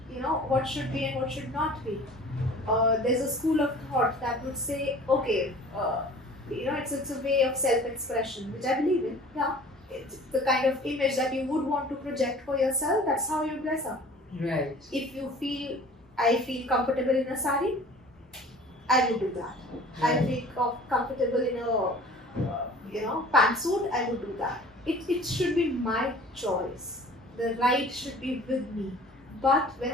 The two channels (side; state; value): both; normal; correlation 0.46